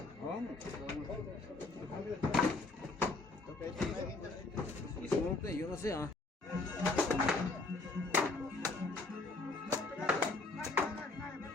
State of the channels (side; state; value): right; quieter; 3.3 dB